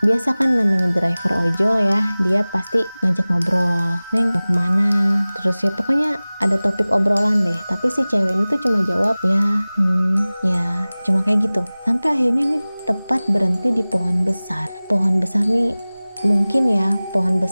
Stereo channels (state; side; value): inverted; both; correlation -0.99